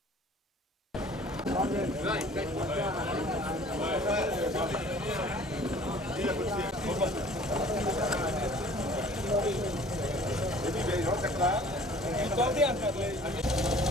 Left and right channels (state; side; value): normal; both; correlation 0.50